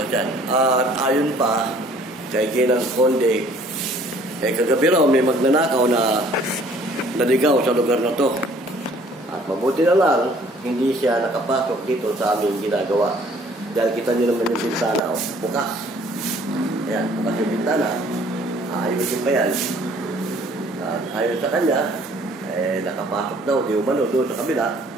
At ayon pa kay Ginang Conde, kagabi raw may magnanakaw na naligaw sa lugar na to. At mabuti na lang, hindi siya nakapasok dito sa aming ginagawa. Dahil kita nyo naman yung bintana, bukas. Ayan, bukas yung bintana. Ayusin pa yan. At ayon sa kanya, nakapasok daw, di umano doon sa kabila.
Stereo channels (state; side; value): normal; both; correlation 0.56